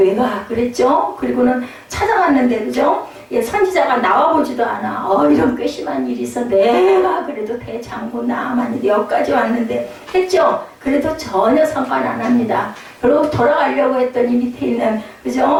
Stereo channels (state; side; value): identical; both; correlation 1.00